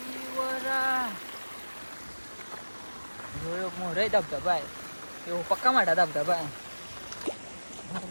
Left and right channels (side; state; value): both; inverted; correlation -1.00